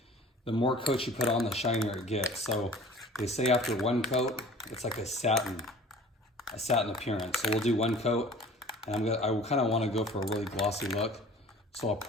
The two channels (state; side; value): normal; both; correlation 0.45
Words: the more coats you put on, the shinier it gets. So they say after 1 coat, it's like a satin appearance. So we'll do 1 coat, and I kind of want to go for a really glossy look. So I'll